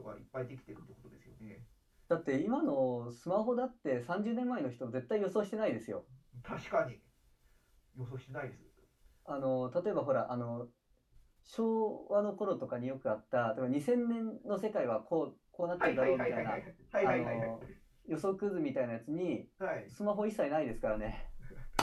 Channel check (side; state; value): both; identical; correlation 1.00